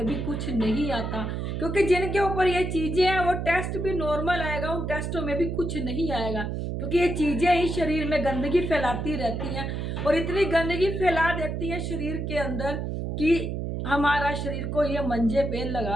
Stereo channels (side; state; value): right; noise; hum, 3 dB below the sound